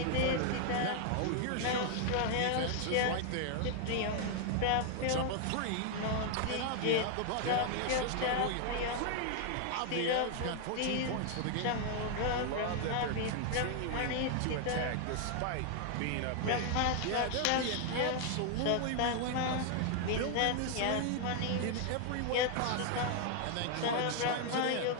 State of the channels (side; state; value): both; different; correlation 0.00